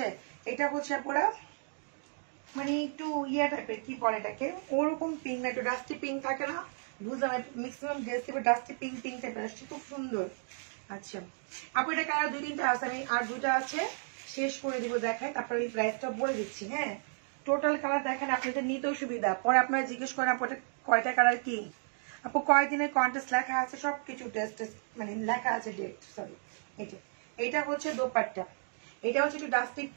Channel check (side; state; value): left; silent; 56 dB below the other